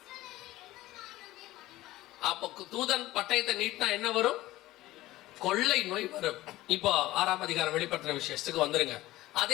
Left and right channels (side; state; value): right; quieter; 16.8 dB